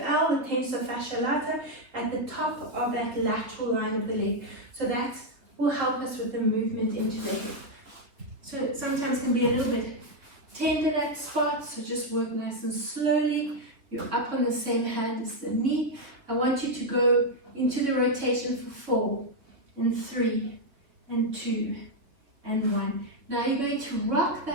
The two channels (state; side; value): late; left; 3.4 ms